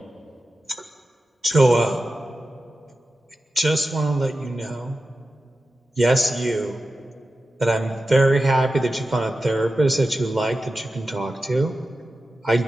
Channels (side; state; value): both; normal; correlation 0.93